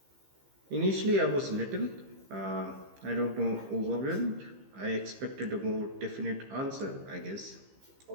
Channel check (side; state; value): left; late; 15 ms